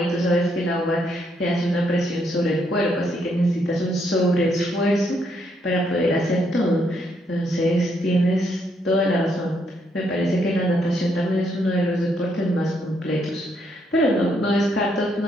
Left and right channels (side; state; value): both; normal; correlation 0.74